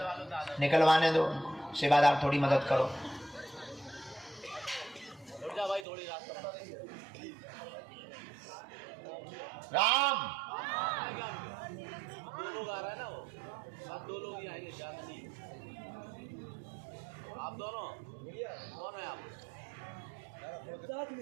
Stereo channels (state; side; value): drops out; left; at 5.9 s